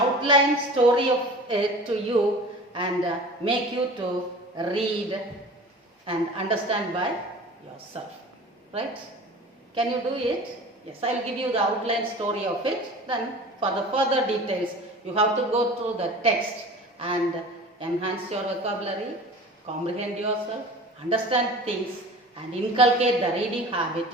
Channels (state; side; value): normal; both; correlation 0.40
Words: story of it to you, and make you to read and understand by yourself. Right? Can you do it? Yes, I will give you the outline story of it. Then for the further details, you have to go through the text and enhance your vocabulary, comprehend yourself, understand things, and inculcate the reading habit